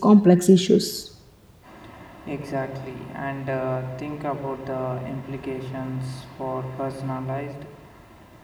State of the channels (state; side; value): identical; both; correlation 1.00